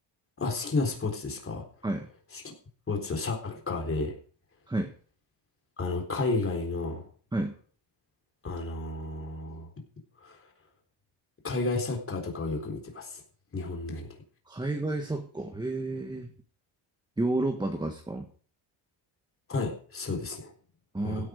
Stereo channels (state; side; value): normal; both; correlation 0.47